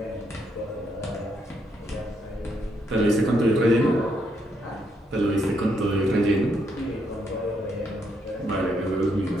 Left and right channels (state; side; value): normal; both; correlation 0.76